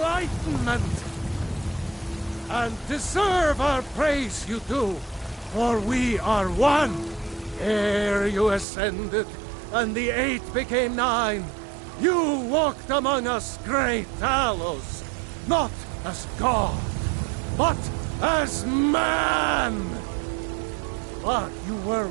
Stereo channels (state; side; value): drops out; left; at 8.7 s